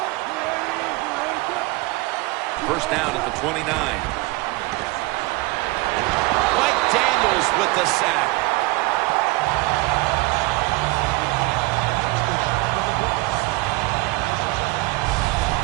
First down at the 29. Mike Daniels with the sack.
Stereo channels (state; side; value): quieter; left; 22.8 dB